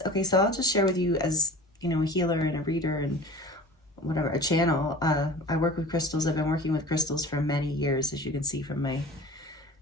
okay, so I'll just share with you as, you know, a healer and a reader and whatever, a channel. I work with crystals. I've been working with crystals for many years, as you can see from my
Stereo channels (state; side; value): normal; both; correlation 0.40